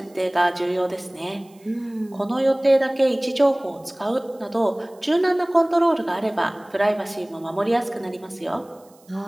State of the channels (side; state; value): right; noise; hiss, 30 dB below the sound